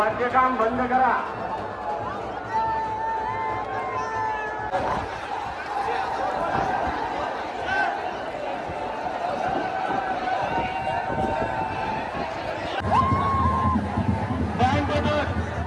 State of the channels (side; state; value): both; identical; correlation 1.00